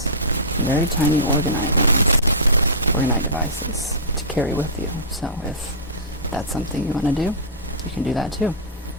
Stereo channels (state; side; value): normal; both; correlation -0.19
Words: very tiny Orgonite ones, Orgonite devices to carry with you. So if that's something you want to do, you can do that too.